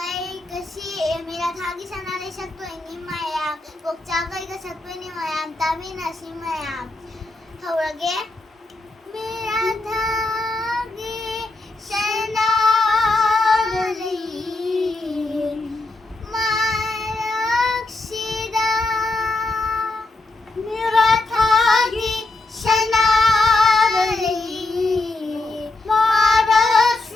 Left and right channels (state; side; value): quieter; right; 3.1 dB